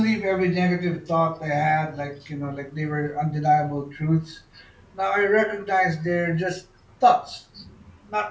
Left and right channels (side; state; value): both; identical; correlation 1.00